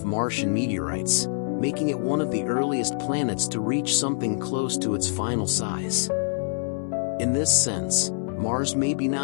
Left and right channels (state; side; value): silent; right; digital silence